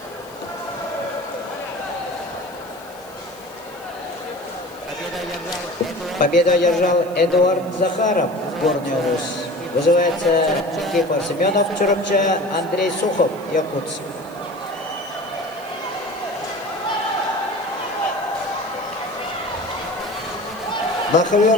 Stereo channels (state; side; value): noise; left; hiss, 24 dB below the sound